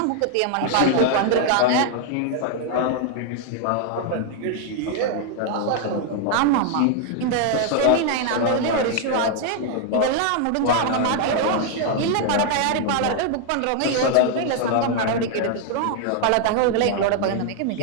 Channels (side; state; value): both; different; correlation 0.00